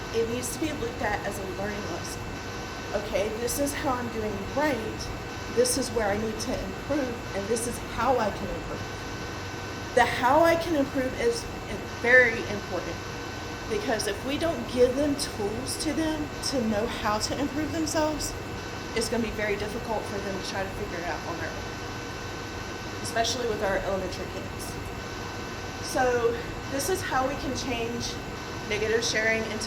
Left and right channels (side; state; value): both; identical; correlation 1.00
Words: It needs to be looked at as a learning lesson. Okay, this is how I'm doing right. This is where I need to improve, and this is how I can improve. The how I can improve is very important, because if we don't give them tools to them to know how to improve themselves, it's going to be very difficult for them to try to figure it out on their own, especially with our elementary kids. So this is how we can change negative sharing